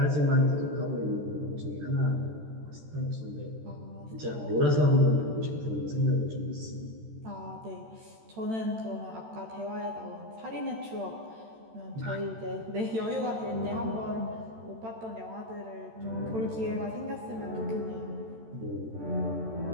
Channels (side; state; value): left; late; 13 ms